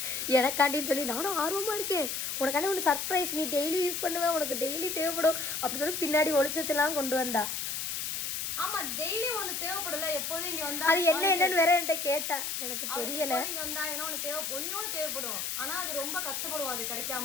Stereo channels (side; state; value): left; noise; hiss, 3 dB below the sound